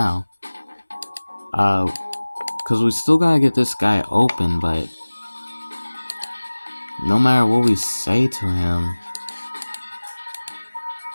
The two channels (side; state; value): both; inverted; correlation -1.00